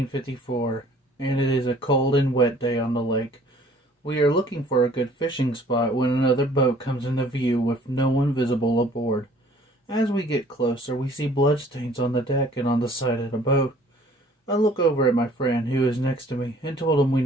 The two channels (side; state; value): both; normal; correlation 0.55